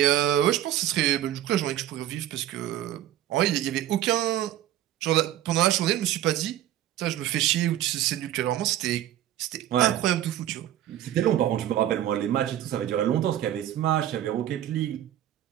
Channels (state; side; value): quieter; left; 12.3 dB